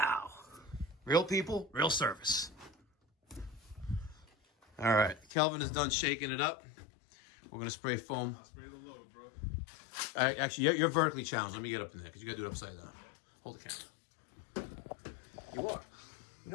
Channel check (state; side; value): drops out; right; at 5.2 s